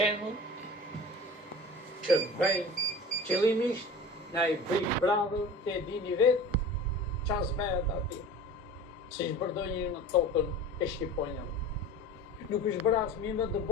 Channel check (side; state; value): both; normal; correlation 0.37